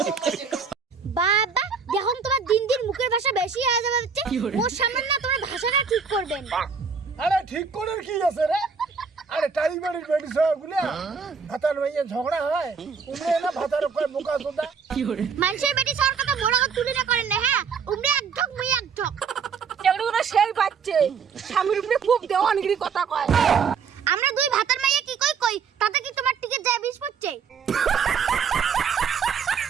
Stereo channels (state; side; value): quieter; left; 5.9 dB